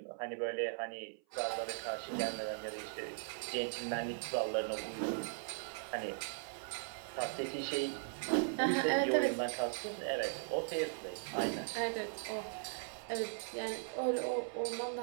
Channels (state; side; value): silent; left; 52 dB below the other